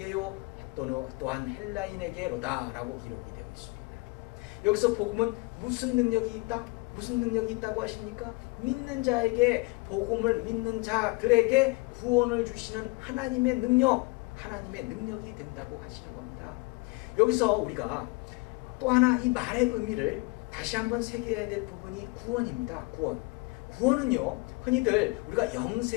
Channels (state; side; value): quieter; right; 26.5 dB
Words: 또한 헬라인에게로다 라고 기록이 되고 있습니다. 여기서 복음은 무슨 능력이 있다? 무슨 능력이 있다고 하십니까? 믿는 자에게, 복음을 믿는 자들에게 구원을 주시는 하나님의 능력이 된다고 하시는 겁니다. 여기서 우리가 또 하나 이 말의 의미를 다시 한번 새겨야 될 부분이 구원입니다. 구원은요, 흔히들 우리가